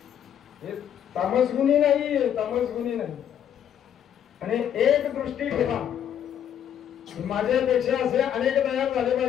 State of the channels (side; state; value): right; quieter; 9.6 dB